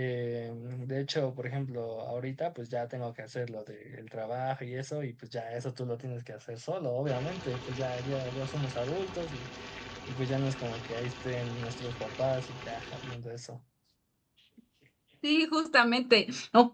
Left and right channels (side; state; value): both; identical; correlation 1.00